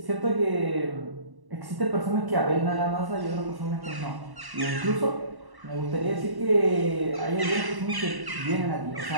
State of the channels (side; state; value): left; late; 1.1 ms